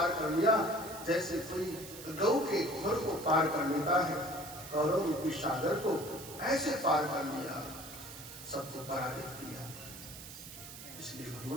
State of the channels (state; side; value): noise; right; hiss, 13 dB below the sound